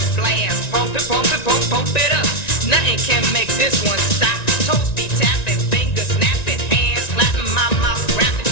Pump it up. Nothing can make this one stop. Toes be tapping, fingers snapping, hands slapping, my mouth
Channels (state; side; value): late; right; 1.9 ms